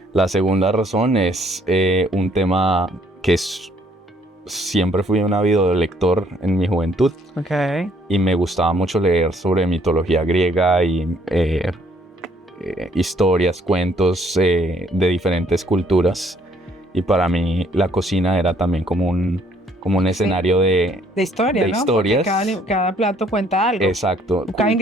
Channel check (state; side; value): normal; both; correlation 0.64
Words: La segunda razón es un tema que siempre fui un ávido lector en mi juventud. Okay. Y me gustaba mucho leer sobre mitología griega y historias, cuentos de diferentes culturas. Y para mí la cocina era también como un escenario de historia, de ¿no? historias. Porque cada plato cuenta algo. Exacto. Cada